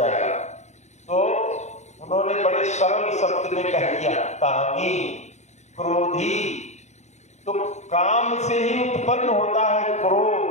तो उन्होंने बड़े सरल शब्द में कह दिया, कामी क्रोधी। तो काम से ही उत्पन्न होता है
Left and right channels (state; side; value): late; right; 0.33 ms